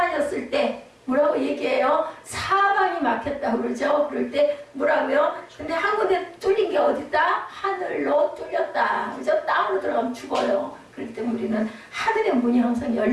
때 뭐라고 얘기해요? 사방이 막혔다고 그러죠. 그럴 때 뭐라고요? 근데 한 군데 뚫린 게 어딨다? 하늘로 뚫렸다. 그죠? 땅으로 들어가면 죽어요. 그럴 때 우리는 하늘의 문이 항상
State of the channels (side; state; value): both; identical; correlation 1.00